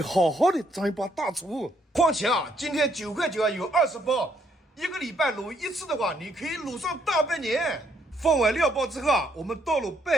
好好的当一把大厨。况且啊，今天9块9啊有20包，一个礼拜卤一次的话，你可以卤上大半年。放完料包之后啊，我们倒入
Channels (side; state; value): both; normal; correlation 0.71